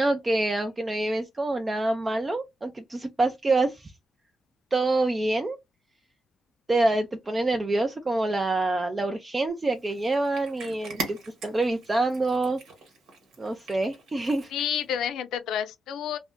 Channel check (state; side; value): normal; both; correlation 0.88